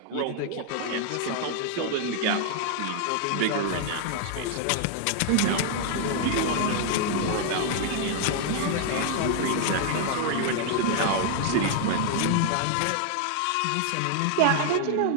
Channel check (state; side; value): different; both; correlation 0.00